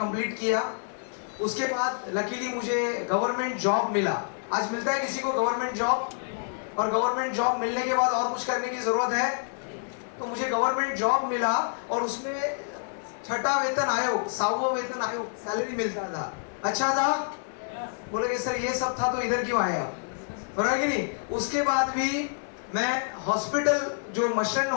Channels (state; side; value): silent; right; 60 dB below the other